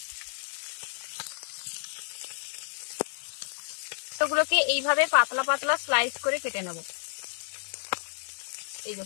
টমেটোগুলোকে এইভাবে পাতলা পাতলা স্লাইস করে কেটে নেব। এই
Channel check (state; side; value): silent; right; digital silence